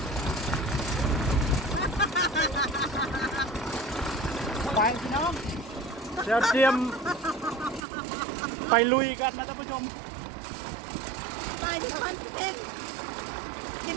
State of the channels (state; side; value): drops out; left; at 7.9 s